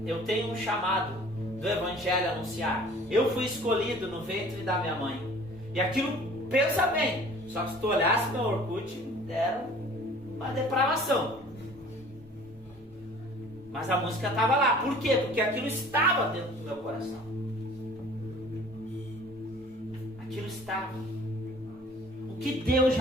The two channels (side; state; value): both; normal; correlation 0.49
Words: eu tenho um chamado do Evangelho a anunciar. Eu fui escolhido no ventre da minha mãe. E aquilo, pensa bem, só que se tu olhasse meu Orkut, era uma depravação. Mas a música estava lá. Por quê? Porque aquilo estava dentro do meu coração. Aquilo estava. O que Deus